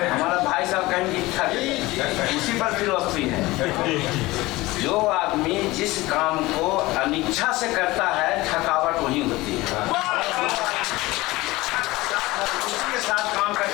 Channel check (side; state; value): right; quieter; 20.0 dB